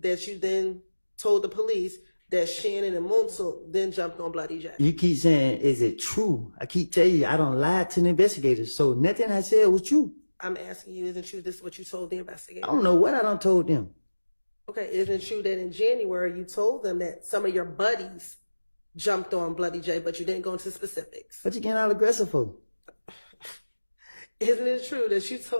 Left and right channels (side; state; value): both; inverted; correlation -1.00